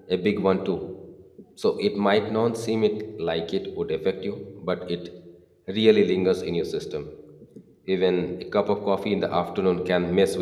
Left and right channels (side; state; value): both; identical; correlation 1.00